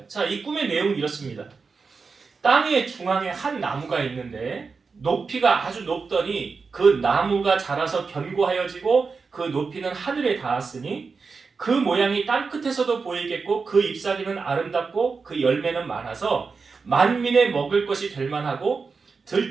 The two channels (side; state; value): left; quieter; 4.8 dB